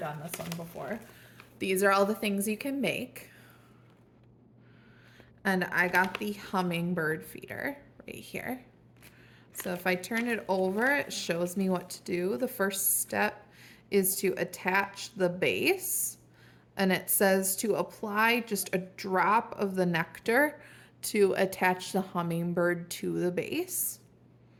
this one before. These are all the things you can make. And I got the Hummingbird Feeder right here. So if I turn it over, it shows me what to do. The first step is to attach the base. And it says to apply just a drop of the nectar to attach the hummingbird to the base.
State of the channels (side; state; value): both; identical; correlation 1.00